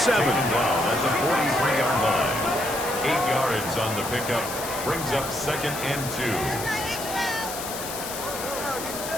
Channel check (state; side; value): noise; left; hiss, 8 dB below the sound